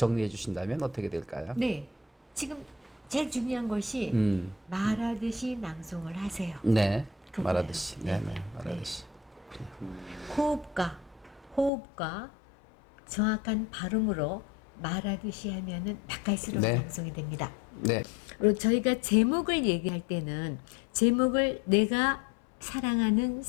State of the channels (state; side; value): drops out; right; at 11.7 s